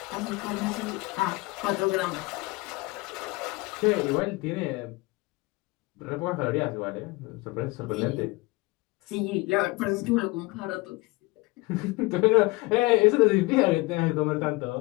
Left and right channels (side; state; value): right; quieter; 23.1 dB